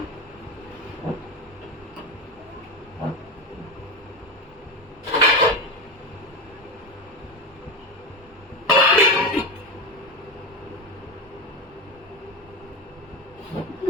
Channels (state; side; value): normal; both; correlation 0.20